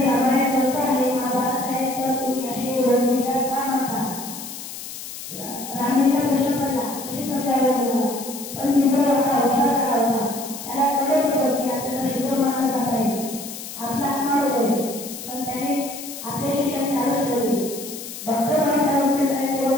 रामायण ग्रंथ आहे, महाभारत आहे, तर तुम्ही असे विचार का म्हणता? रामजींना प्रश्न पडला कशी समजावे मुलाला. पण भीमराव एवढा हुशार झाला होता, त्याला कळत होतं की आपल्याला शूद्र मानलं जात आहे, आपला अपमान होतोय. पण त्याने आपले शिक्षण चालूच ठेवले. डॉक्टर बाबासाहेब आंबेडकरांचे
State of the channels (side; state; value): left; noise; hiss, 10 dB below the sound